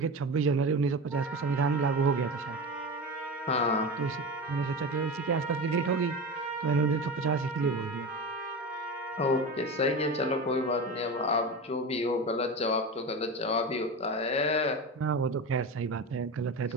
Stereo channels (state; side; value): normal; both; correlation 0.25